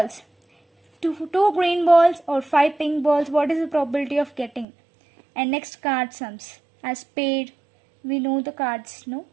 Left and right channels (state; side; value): drops out; left; at 4.7 s